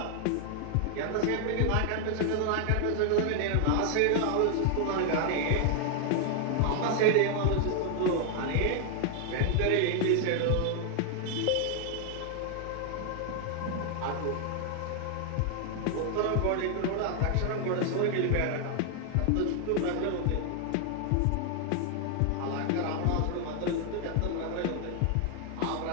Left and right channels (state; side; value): different; both; correlation 0.00